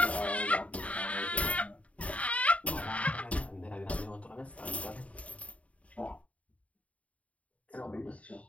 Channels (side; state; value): right; late; 0.066 ms